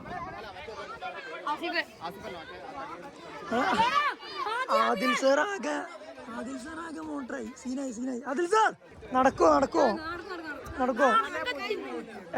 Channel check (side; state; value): both; identical; correlation 1.00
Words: ആദിൽ സാർ ആകെ മോട്ടറായി. സീനായി. ആദിൽ സാർ നടക്കോ?